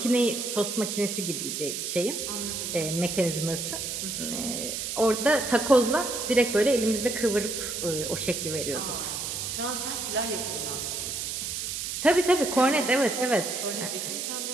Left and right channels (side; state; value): right; noise; hiss, 4 dB below the sound